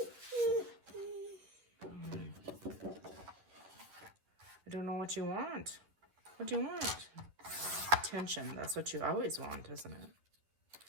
I don't know what you want. What do you want? Attention. That's what you always want, isn't it?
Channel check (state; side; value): late; left; 11 ms